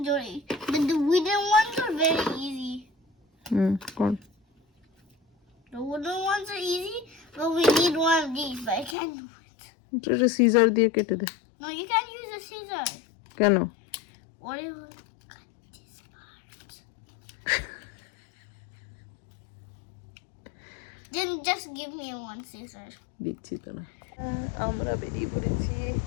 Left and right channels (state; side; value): drops out; right; at 9.0 s